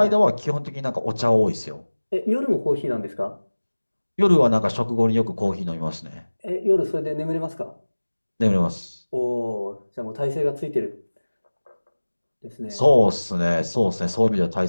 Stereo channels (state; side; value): inverted; both; correlation -1.00